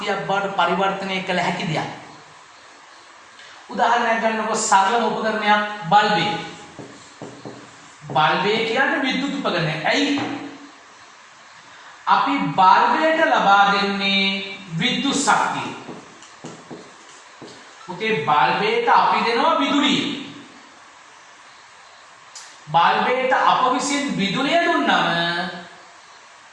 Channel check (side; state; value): both; identical; correlation 1.00